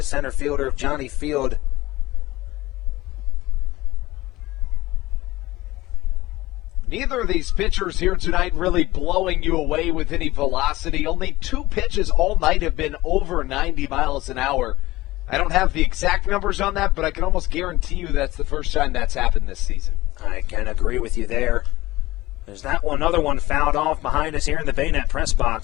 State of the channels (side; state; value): right; quieter; 18.1 dB